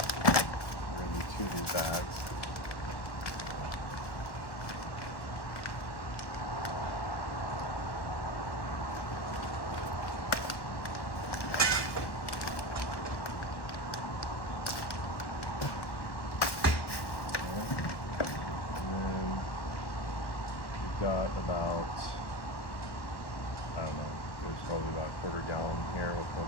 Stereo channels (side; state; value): right; late; 1.1 ms